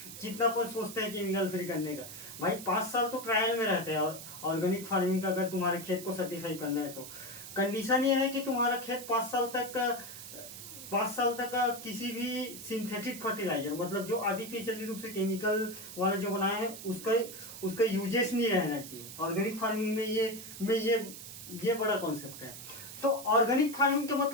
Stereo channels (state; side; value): noise; right; hiss, 12 dB below the sound